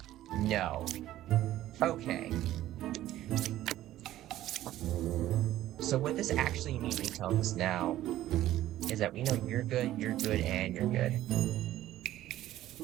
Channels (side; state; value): left; quieter; 14.0 dB